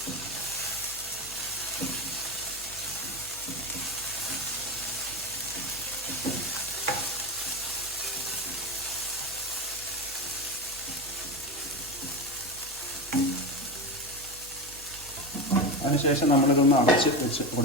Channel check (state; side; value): normal; both; correlation 0.19